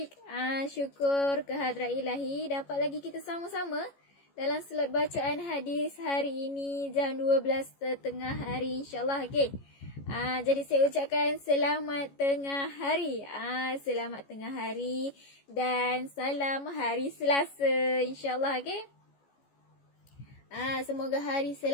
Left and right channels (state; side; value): late; right; 14 ms